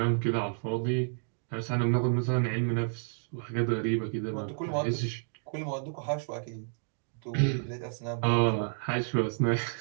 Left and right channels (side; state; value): left; silent; digital silence